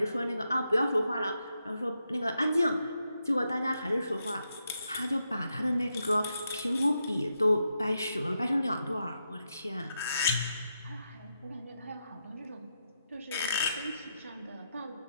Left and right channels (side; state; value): both; inverted; correlation -0.84